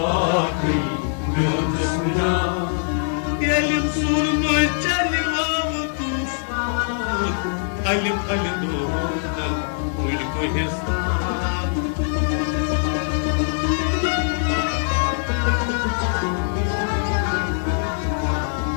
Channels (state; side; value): silent; right; digital silence